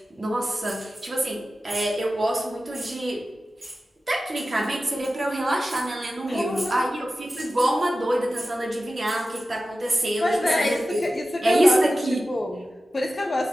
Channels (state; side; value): normal; both; correlation 0.94